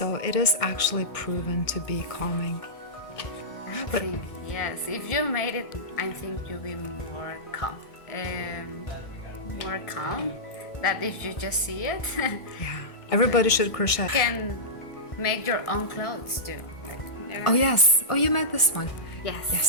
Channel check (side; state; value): right; late; 1.6 ms